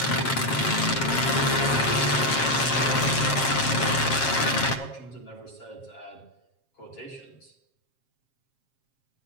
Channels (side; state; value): right; late; 7.5 ms